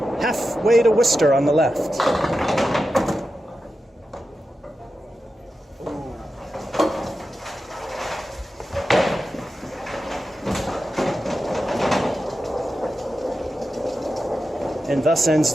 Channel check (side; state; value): both; normal; correlation 0.91